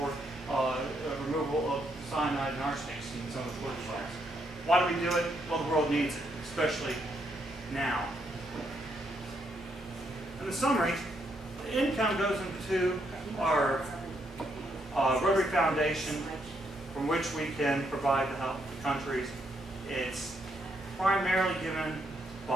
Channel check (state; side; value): normal; both; correlation 0.76